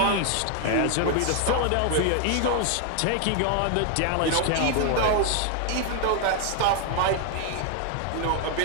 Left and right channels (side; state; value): both; different; correlation 0.00